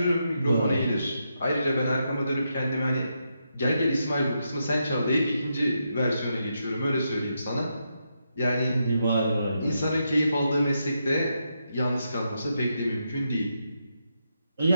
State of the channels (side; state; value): both; inverted; correlation -0.83